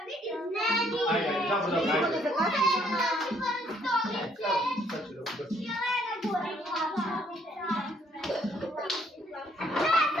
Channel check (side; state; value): both; normal; correlation 0.66